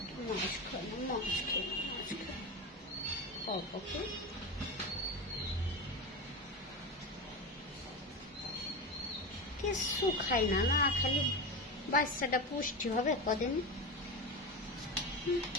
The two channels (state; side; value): normal; both; correlation 0.22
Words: মাছ খাও না, মাছ খাও না, মাছ খাও, অল্প কিছু খাই না, না খালি বাচ্চাটা পুষ্টি হবে কদিন।